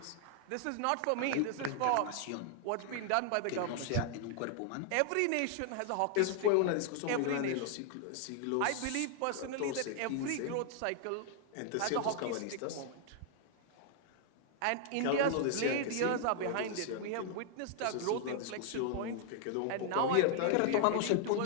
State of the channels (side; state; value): both; different; correlation 0.00